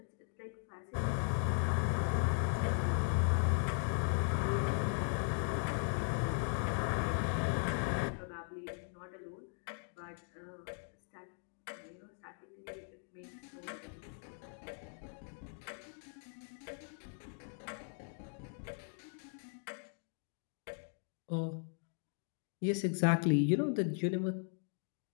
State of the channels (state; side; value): silent; right; 52 dB below the other